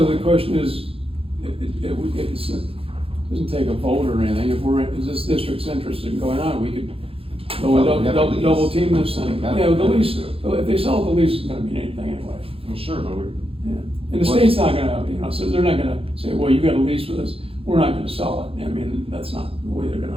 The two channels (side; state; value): left; late; 0.27 ms